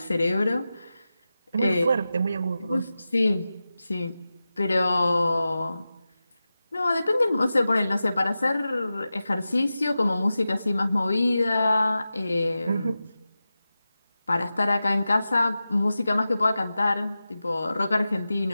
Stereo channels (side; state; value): both; inverted; correlation -0.93